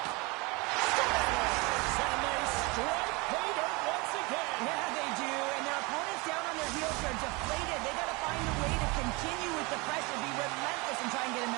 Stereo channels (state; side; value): quieter; left; 26.6 dB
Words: And they strike pay dirt once again. Yeah, they do. And their opponents down on their heels are deflated. They got to find a way to continue with